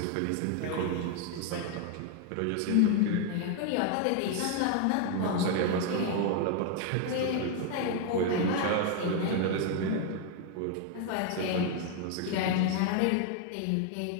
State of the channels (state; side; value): different; both; correlation 0.00